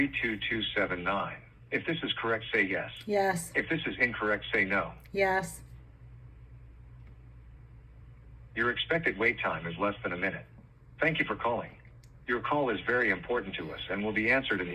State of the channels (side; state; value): both; identical; correlation 1.00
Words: If this is correct, say yes. Yes. If this is incorrect, say no. Yes. Your expected wait time is less than a minute. Thank you for calling. Your call is very important to us and will be answered in